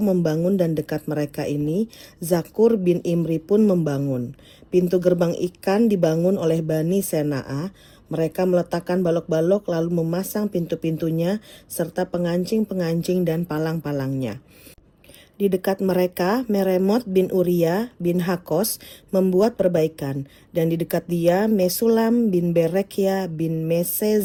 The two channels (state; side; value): identical; both; correlation 1.00